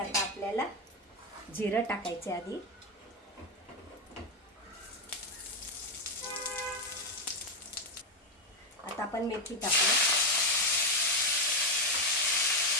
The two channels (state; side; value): normal; both; correlation 0.06